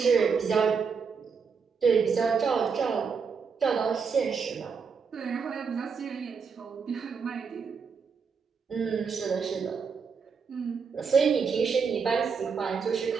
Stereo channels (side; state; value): left; quieter; 5.7 dB